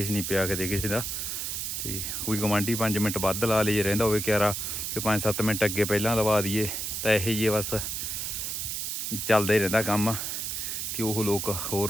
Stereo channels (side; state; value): right; noise; hiss, 3 dB below the sound